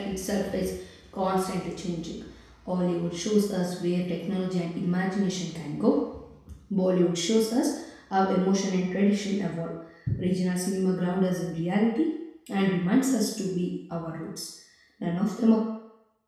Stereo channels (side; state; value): both; identical; correlation 1.00